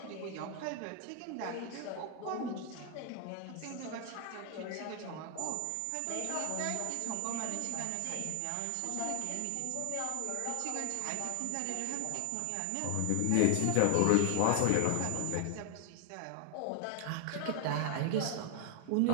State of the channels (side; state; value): both; different; correlation 0.00